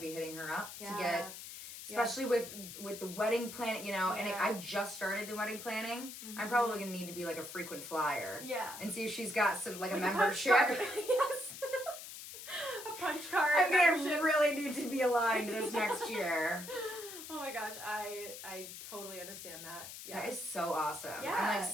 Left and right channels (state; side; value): noise; left; hiss, 11 dB below the sound